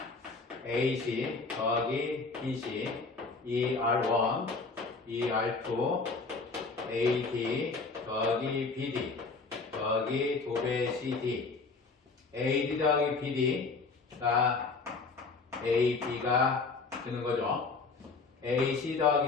AC 더하기 BC ER1 ER2 AD 더하기 BD 더하기 2배 CD AD 더하기 BD가 AB가 되는 거죠. AC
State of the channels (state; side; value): quieter; right; 4.2 dB